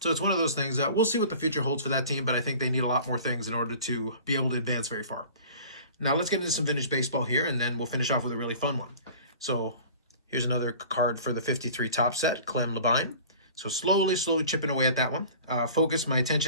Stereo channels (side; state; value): both; inverted; correlation -0.43